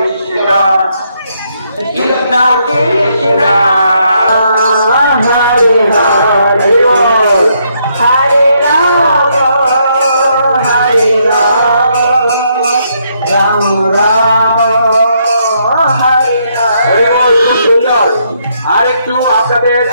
কৃষ্ণ কৃষ্ণ হরে হরে, হরে রাম হরে রাম, রাম রাম হরে হরে। সুন্দর। আর একটু আপনাদের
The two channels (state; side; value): inverted; both; correlation -0.74